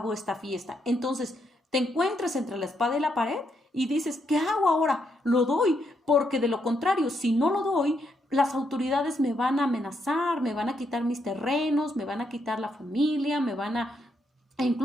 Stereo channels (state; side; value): normal; both; correlation 0.78